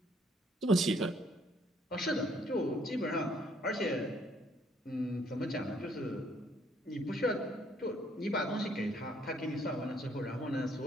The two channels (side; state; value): both; normal; correlation 0.66